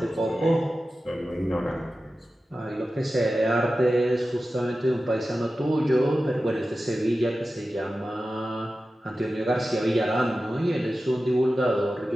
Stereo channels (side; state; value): both; normal; correlation 0.94